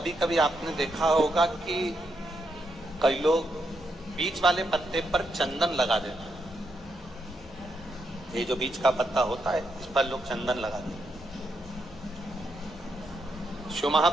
कभी आपने देखा होगा कि कई लोग बीच वाले पत्ते पर चंदन लगा देते हैं। ये जो बीच का पत्ता होता है, इस पर लोग चंदन लगा देते हैं। शिव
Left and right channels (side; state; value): both; normal; correlation 0.80